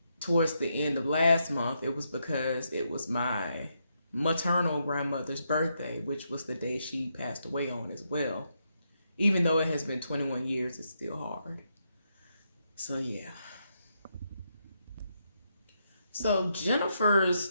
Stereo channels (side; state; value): both; inverted; correlation -0.80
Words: towards the end of last month, it was because it was my maternal grandmother's birthday, which was the day she passed away on as well. Even though it has been 21 years, it's still hard. So yeah. So